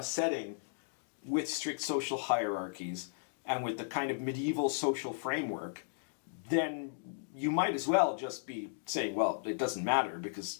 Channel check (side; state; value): right; silent; digital silence